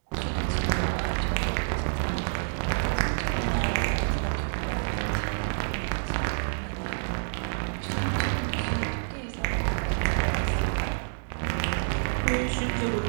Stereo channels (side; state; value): left; silent; digital silence